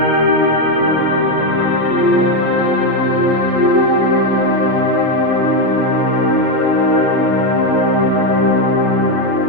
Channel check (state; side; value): late; left; 6.1 ms